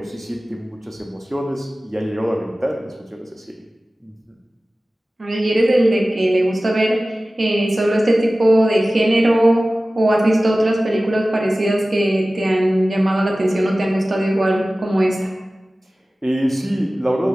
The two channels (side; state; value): both; normal; correlation 0.97